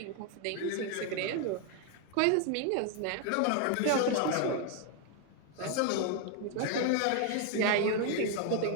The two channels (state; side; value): different; both; correlation 0.01